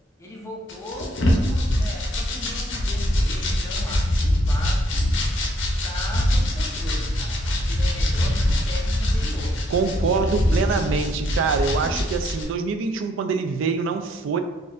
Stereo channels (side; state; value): both; normal; correlation 0.70